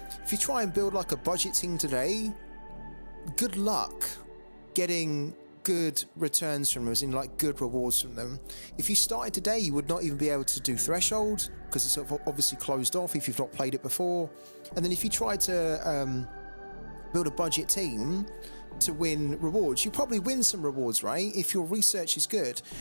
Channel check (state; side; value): inverted; both; correlation -1.00